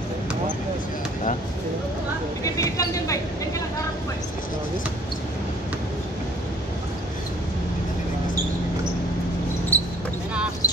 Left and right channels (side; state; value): both; normal; correlation 0.55